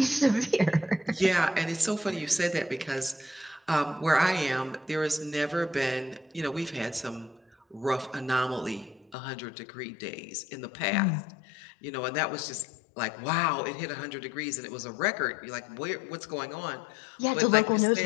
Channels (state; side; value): drops out; right; at 9.2 s